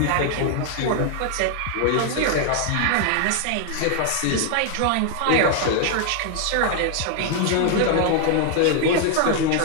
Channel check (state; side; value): different; both; correlation 0.00